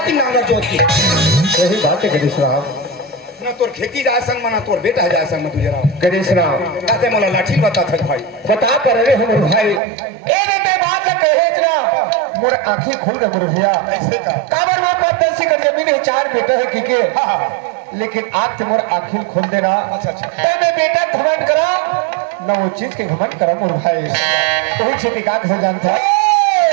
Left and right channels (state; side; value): drops out; left; at 9.8 s